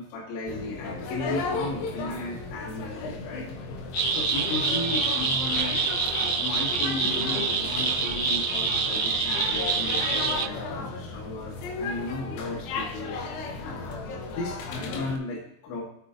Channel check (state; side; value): late; right; 23 ms